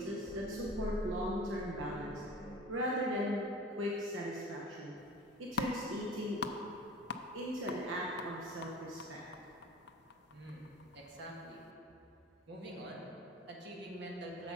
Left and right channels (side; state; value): both; normal; correlation 0.40